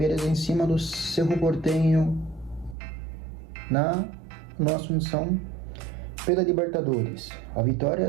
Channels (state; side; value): drops out; left; at 2.8 s